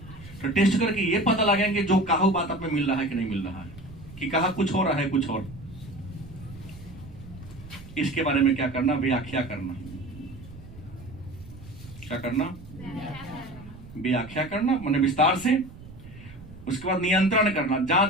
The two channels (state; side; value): noise; right; rumble, 17 dB below the sound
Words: तो टेस्ट करके ये पता लगाएंगे जो कहा बात आप में मिल रहा है कि नहीं मिल रहा है, कि कहा कुछ हो रहा है कुछ और। इसके बारे में क्या करना, व्याख्या करना। क्या करना, व्याख्या करना, माने विस्तार से। उसके बाद नियंत्रण करना,